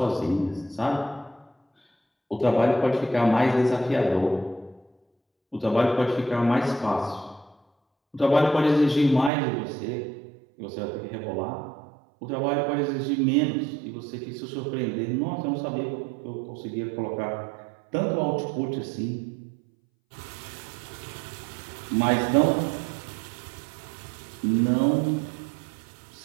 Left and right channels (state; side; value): drops out; left; at 9.3 s